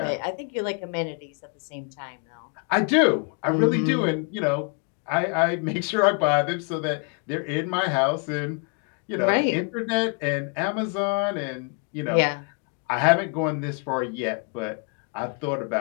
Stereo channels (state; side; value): quieter; right; 39.0 dB